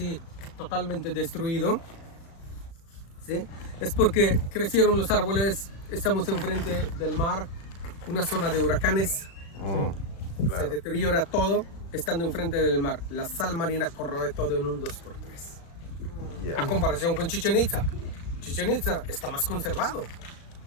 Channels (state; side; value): late; right; 36 ms